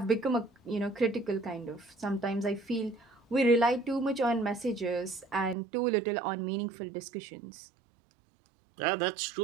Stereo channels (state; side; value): drops out; left; at 5.6 s